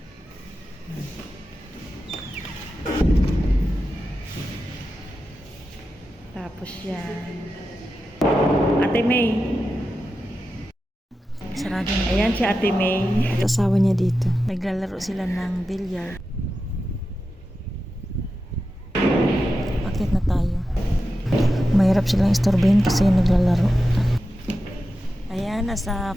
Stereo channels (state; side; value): normal; both; correlation 0.91